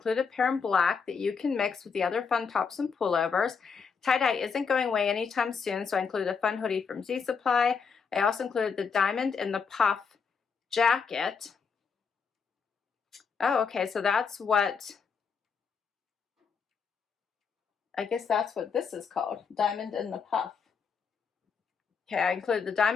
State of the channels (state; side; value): quieter; right; 5.8 dB